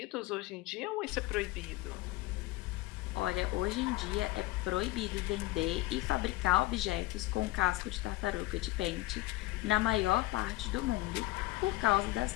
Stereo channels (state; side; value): quieter; right; 18.5 dB